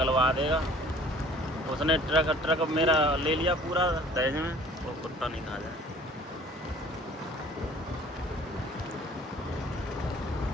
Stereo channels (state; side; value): normal; both; correlation 0.51